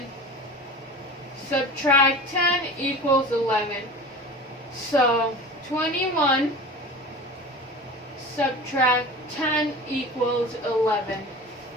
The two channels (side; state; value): both; normal; correlation 0.35